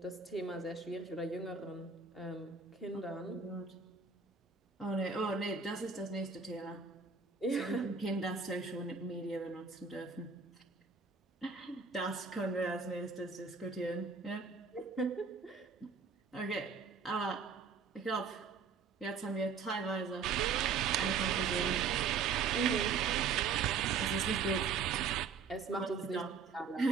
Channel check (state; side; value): quieter; left; 5.4 dB